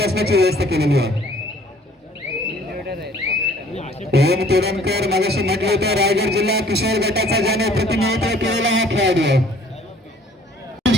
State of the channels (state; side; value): normal; both; correlation 0.56